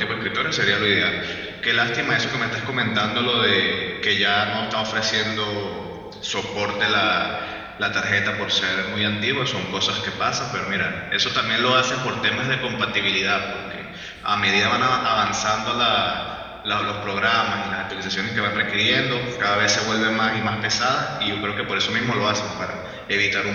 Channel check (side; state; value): both; identical; correlation 1.00